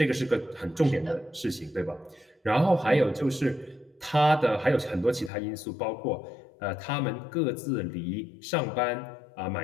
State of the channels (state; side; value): drops out; right; at 5.3 s